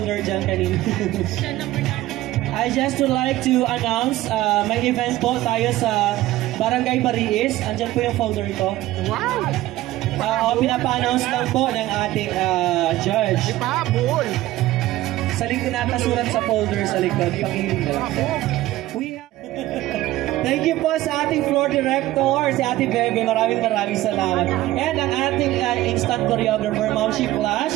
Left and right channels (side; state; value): left; quieter; 16.1 dB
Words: dyan kanina. I just would like to announce may event po tayo sa Barangay Bariis. Andyan po yung folder ito. Wow! Pinapa-announce lang po ng ating judge. Sa likod natin surat sa folder sa likod. Thank you po sa ating floor director, si Ate Bebe. Maraming salamat. And ang ating instant choreographer, Ma'am She Flash.